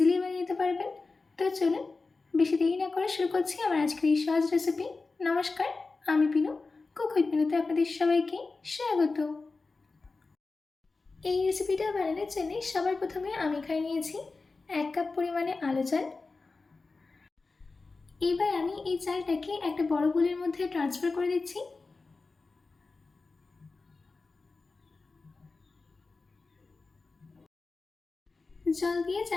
বানিয়ে নিতে পারবেন। তো চলুন, বেশি দেরি না করে শুরু করছি আমার আজকের এই সহজ রেসিপি। নমস্কার, আমি পিনু। কুক উইথ পিনুতে আপনাদের সবাইকে স্বাগত। এই রেসিপিটা বানানোর জন্য সবার প্রথমে আমি এখানে নিয়েছি 1 কাপ পরিমাণে আলু চাল। এবার আমি এই চালটাকে একটা বড় বোলের মধ্যে ট্রান্সফার করে দিচ্ছি। জল দিয়ে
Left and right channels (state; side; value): quieter; right; 3.9 dB